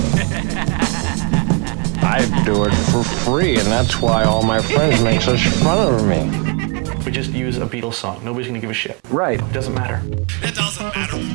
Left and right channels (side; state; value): left; quieter; 34.0 dB